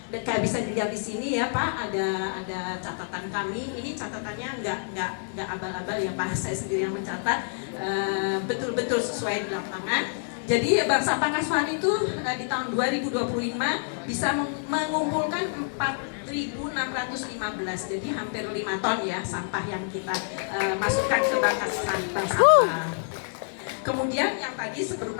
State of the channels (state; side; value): silent; right; 60 dB below the other